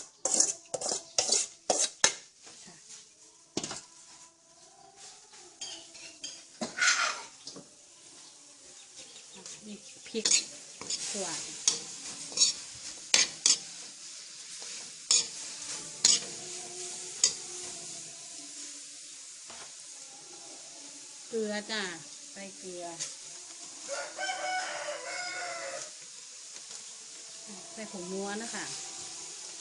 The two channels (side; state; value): both; identical; correlation 1.00